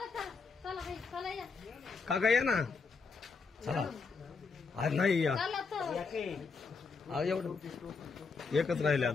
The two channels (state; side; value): quieter; right; 4.7 dB